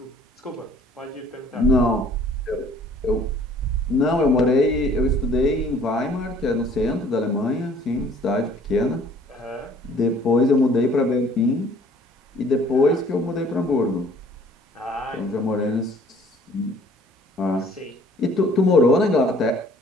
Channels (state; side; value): normal; both; correlation 0.55